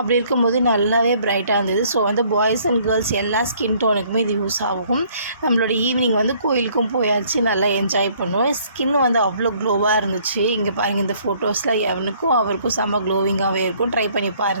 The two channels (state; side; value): inverted; both; correlation -0.61